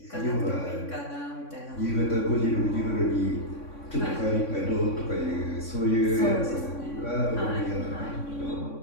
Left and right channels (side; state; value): right; late; 3.6 ms